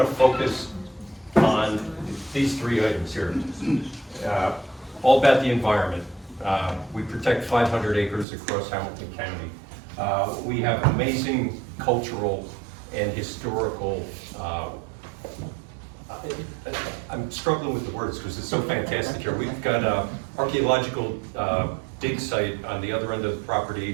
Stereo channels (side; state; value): left; drops out; at 8.2 s